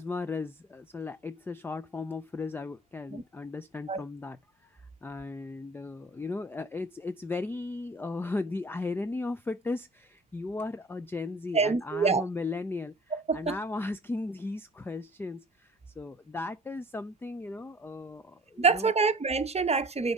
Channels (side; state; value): both; normal; correlation 0.50